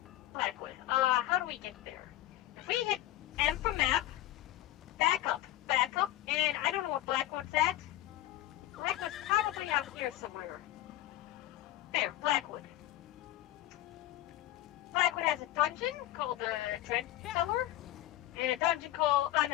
How do we get there? If we hit M for map, back up, and I don't know what Blackwood's at. Blackwood's probably out here somewhere. There, Blackwood. Blackwood has a dungeon called the Dread Cellar, and a dungeon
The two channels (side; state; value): right; quieter; 14.7 dB